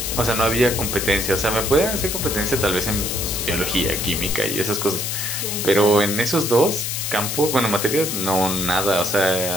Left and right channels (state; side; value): noise; left; hiss, 2 dB below the sound